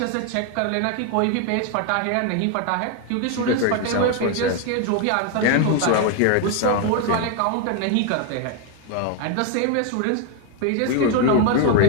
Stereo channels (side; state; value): both; different; correlation 0.01